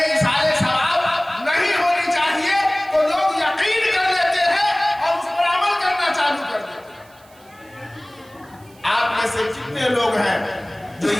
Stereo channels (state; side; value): noise; right; hiss, 28 dB below the sound